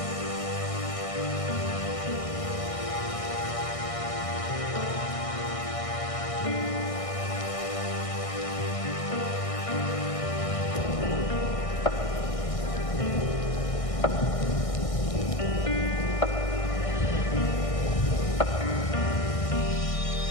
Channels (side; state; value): right; late; 1.6 ms